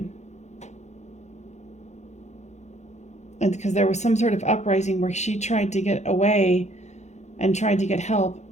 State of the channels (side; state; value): right; late; 0.33 ms